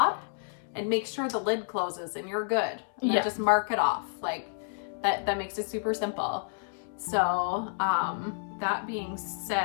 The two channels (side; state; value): right; silent; 58 dB below the other